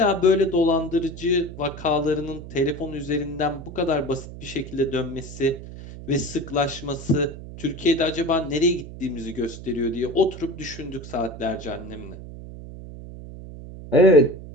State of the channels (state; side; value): noise; right; hum, 13 dB below the sound